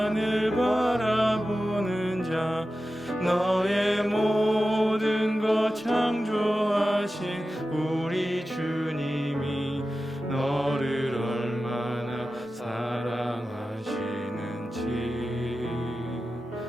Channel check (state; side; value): normal; both; correlation 0.93